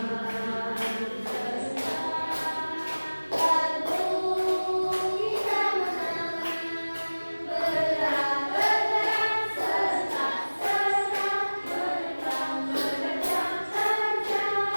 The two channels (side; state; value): both; inverted; correlation -1.00